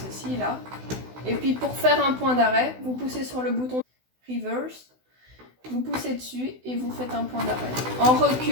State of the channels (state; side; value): late; left; 16 ms